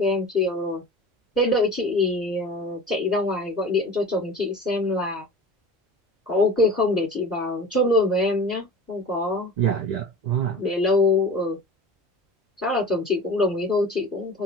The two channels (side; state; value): both; normal; correlation 0.37